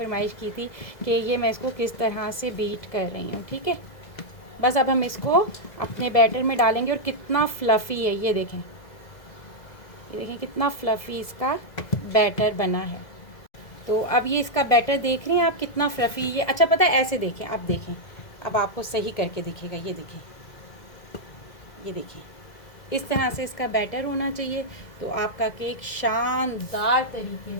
की थी कि ये मैं इसको किस तरह से बीट कर रही हूँ। ठीक है, बस अब हम इसको अपने बैटर में डालेंगे। और कितना फ्लफ़ी है, ये देखें, ये देखें कितना फ्लफ़ी इसका बैटर बना है। तो अब ये इसका बैटर देख रहे हैं आप कितना फ्लफ़ी ये। अच्छा पता है, ऐसे देखें, अब देखें, अब आपको सही करके दिखेगा। ये देखें, ये देखिए, इस तरह से इसका बैटर होना चाहिए। तो आपका केक शानदार तरीके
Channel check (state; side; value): late; right; 2.0 ms